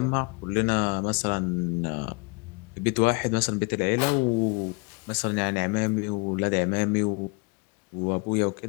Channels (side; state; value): right; quieter; 30.7 dB